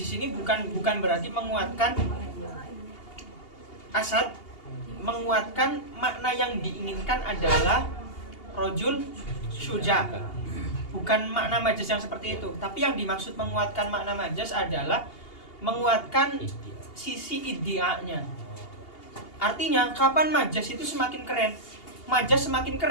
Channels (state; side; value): late; right; 2.8 ms